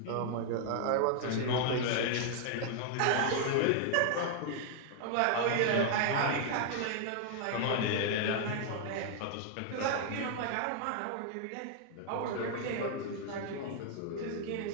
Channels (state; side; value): different; both; correlation 0.00